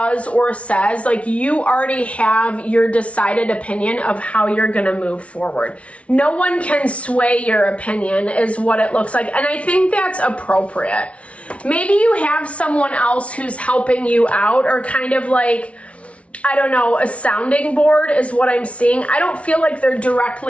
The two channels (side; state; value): right; late; 0.063 ms